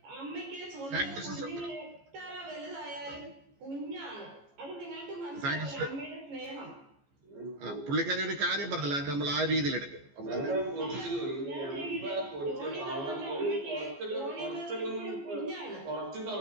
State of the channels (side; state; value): left; late; 14 ms